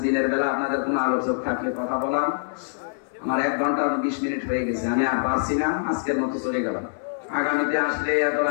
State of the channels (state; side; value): silent; right; digital silence